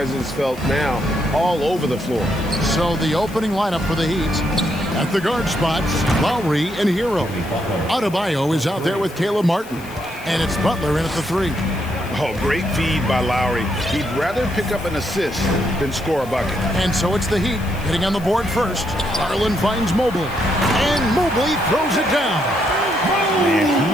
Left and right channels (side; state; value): left; noise; hiss, 20 dB below the sound